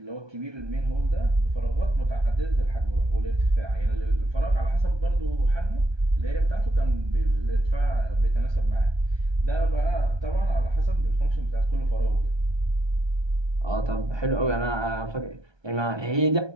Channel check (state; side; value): late; left; 1.2 ms